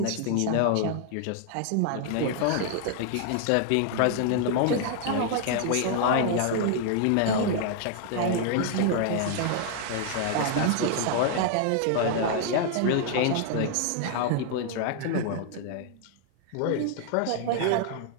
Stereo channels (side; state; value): both; different; correlation 0.00